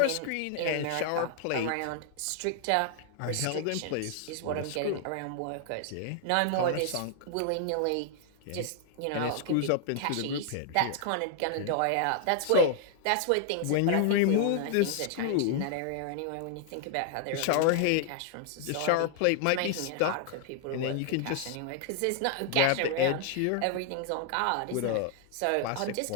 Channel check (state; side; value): different; both; correlation 0.00